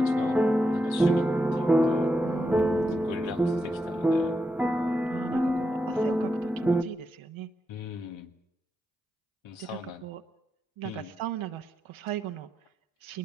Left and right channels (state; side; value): normal; both; correlation 0.86